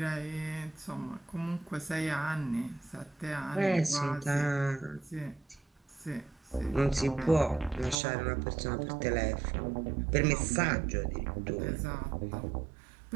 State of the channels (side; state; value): left; drops out; at 8.0 s